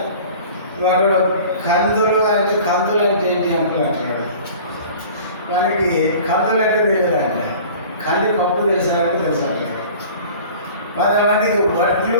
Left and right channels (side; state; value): both; inverted; correlation -0.44